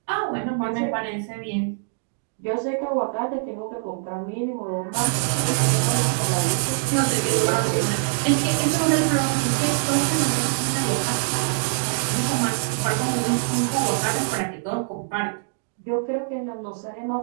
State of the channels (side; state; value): left; silent; digital silence